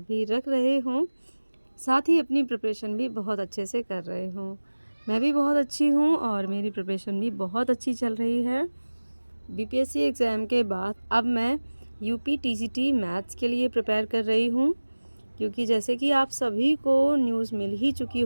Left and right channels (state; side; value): inverted; both; correlation -1.00